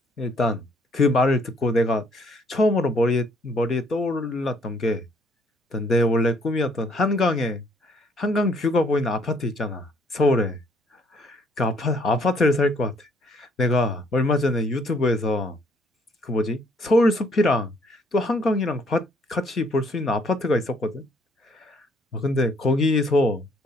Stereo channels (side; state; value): both; normal; correlation 0.64